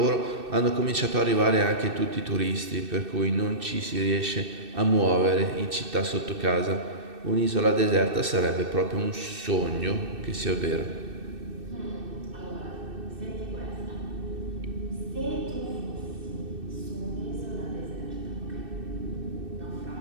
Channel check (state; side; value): late; left; 2.6 ms